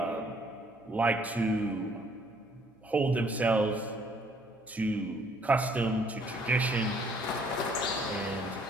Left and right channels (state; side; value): normal; both; correlation 0.63